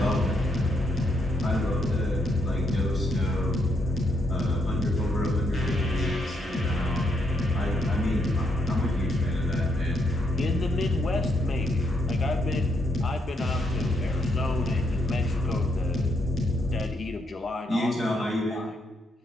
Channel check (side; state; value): both; normal; correlation 0.77